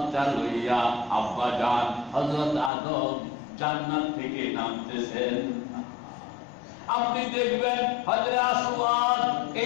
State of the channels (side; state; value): right; drops out; at 2.7 s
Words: লইয়া আব্বা জান হযরত আদম জান্নাত থেকে নামতেছেন। আপনি দেখবেন হজরে আসওয়াদ